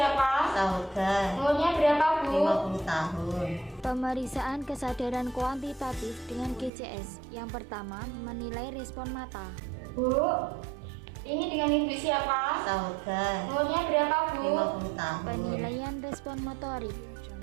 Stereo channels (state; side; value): drops out; left; at 6.7 s